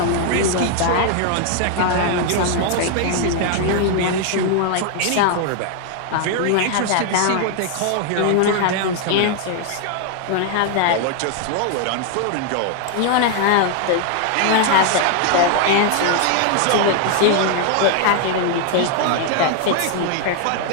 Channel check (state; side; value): different; both; correlation 0.00